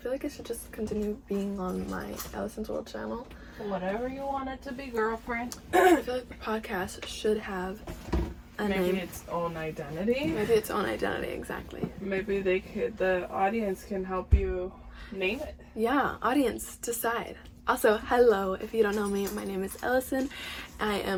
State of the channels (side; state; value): both; identical; correlation 1.00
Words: like it should just continue being on my Ellison's World channel. Whatever you want it to be, girlfriend. I feel like the podcast should have a name. Maybe its own identity. Maybe its own identity, exactly. Maybe the audience can help you name it. Yeah, audience, decide. Also, hello, if you don't know me, my name is Ellison. I